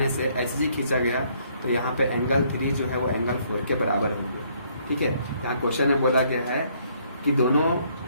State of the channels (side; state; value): both; inverted; correlation -0.67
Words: से एच जी खींचा गया तो यहाँ पे एंगल 3 जो है वो एंगल 4 के बराबर हो गया, ठीक है। यहाँ क्वेश्चन में बोला गया है कि दोनों